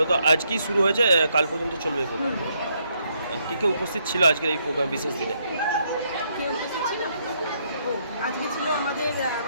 আজকেই শুরু হয়েছে, কাল পর্যন্ত চলবে এই প্রোগ্রাম। কে কে উপস্থিত ছিল আজকের এই প্রোগ্রাম বিশেষ দিনে? কে উপস্থিত ছিল? ও আজকে ছিল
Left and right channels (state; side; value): inverted; both; correlation -0.74